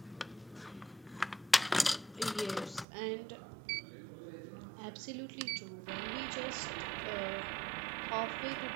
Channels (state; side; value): drops out; left; at 2.9 s